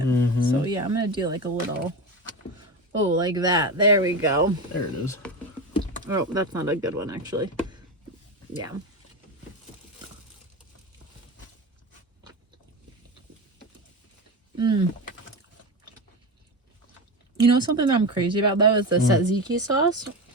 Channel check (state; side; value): normal; both; correlation 0.21